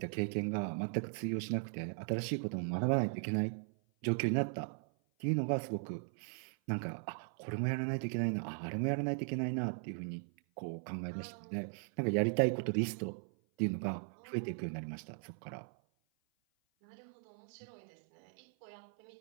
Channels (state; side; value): silent; left; 52 dB below the other